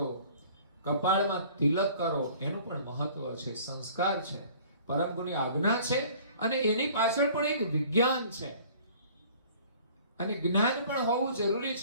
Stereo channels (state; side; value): inverted; both; correlation -0.51